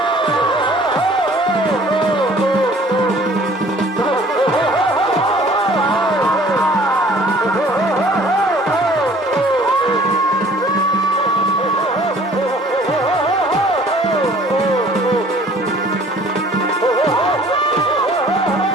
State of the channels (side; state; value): both; normal; correlation 0.53